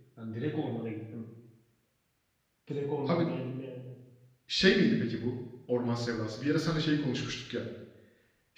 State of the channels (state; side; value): identical; both; correlation 1.00